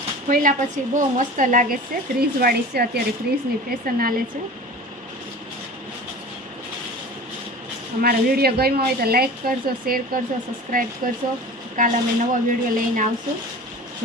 ખોલ્યા પછી બહુ મસ્ત લાગે છે। ક્રીઝવાળી છે, અત્યારે ક્રીઝની ફેશન હાલે છે। અમારો વિડીયો ગમ્યો હોય તો લાઈક કરજો, શેર કરજો, સબસ્ક્રાઈબ કરજો। કાલે અમે નવો વિડીયો લઈને આવશું,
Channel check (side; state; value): both; normal; correlation 0.38